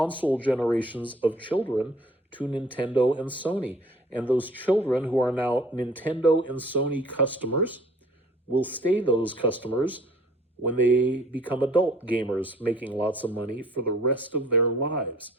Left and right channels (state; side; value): normal; both; correlation 0.53